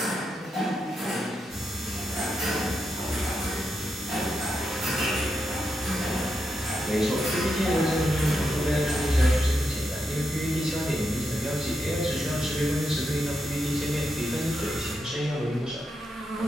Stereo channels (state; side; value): normal; both; correlation 0.85